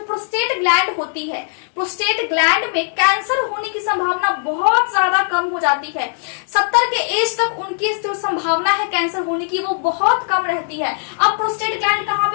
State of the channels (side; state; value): right; silent; 63 dB below the other